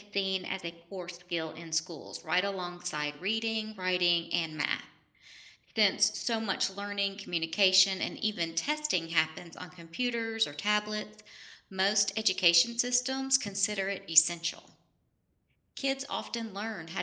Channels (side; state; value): both; identical; correlation 1.00